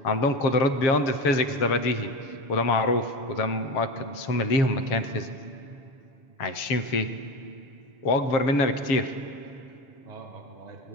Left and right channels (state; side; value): late; right; 7.0 ms